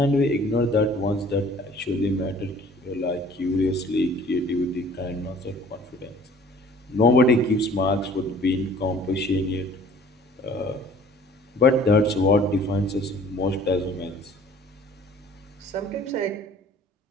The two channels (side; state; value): both; normal; correlation 0.51